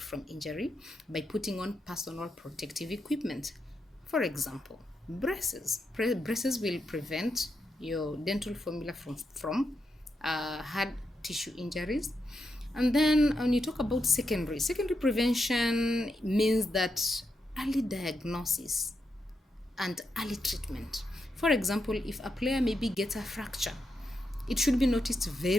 from injury by putting on personal protective equipment. For example, braces. Braces will prevent your dental formula from hard tissue injuries. And then when you talk about secondary prevention means that early diagnosis and early treatment. For example, if a player maybe gets a fracture, it should be noticed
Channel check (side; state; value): both; normal; correlation 0.84